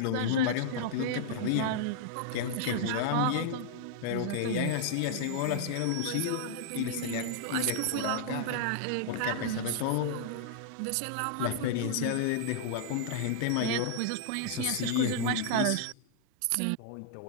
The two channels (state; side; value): different; both; correlation -0.01